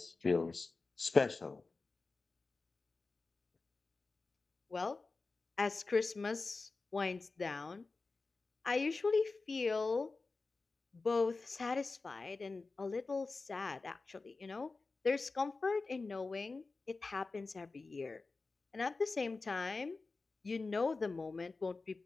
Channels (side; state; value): right; quieter; 3.8 dB